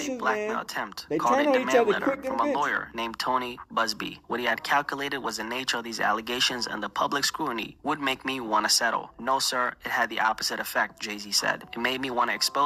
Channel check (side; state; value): both; identical; correlation 1.00